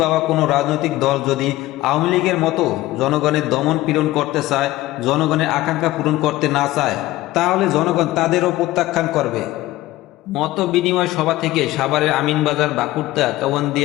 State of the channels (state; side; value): quieter; right; 17.0 dB